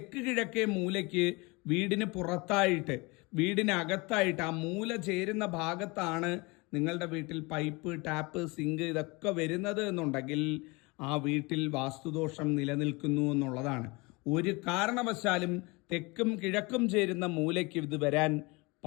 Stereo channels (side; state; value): right; quieter; 26.1 dB